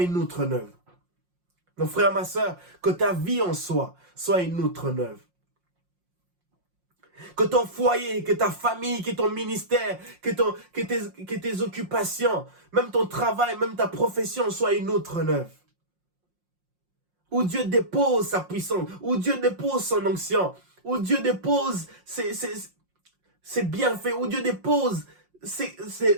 une outre neuve. Mon frère, ma soeur, que ta vie en soi soit une outre neuve. Que ton foyer, que ta famille, que ton ministère, que tes occupations, même ton travail, même ta profession soit une outre neuve. Où Dieu dépose sa puissance, où Dieu dépose son onction, où Dieu dépose ses bienfaits, où Dieu dépose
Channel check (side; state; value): left; late; 5.6 ms